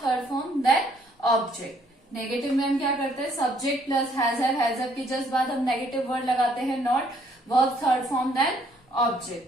form. Then object. Negative में हम क्या करते हैं? सब्जेक्ट प्लस हैज हैव के जस्ट बाद हम नेगेटिव वर्ड लगाते हैं not. Verb third form then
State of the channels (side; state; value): both; normal; correlation 0.65